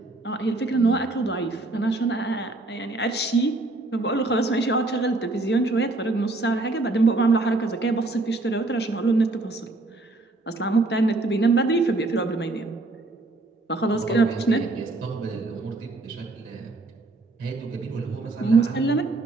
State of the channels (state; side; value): quieter; left; 3.1 dB